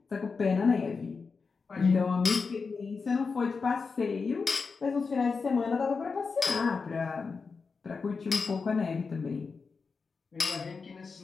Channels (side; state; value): right; quieter; 4.8 dB